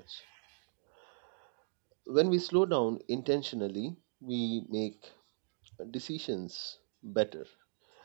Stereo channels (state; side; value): silent; left; digital silence